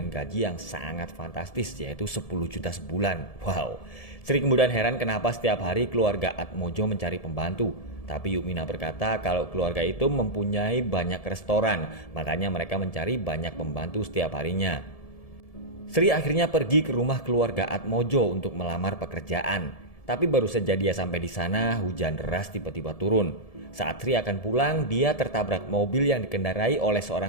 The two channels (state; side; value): late; right; 1.7 ms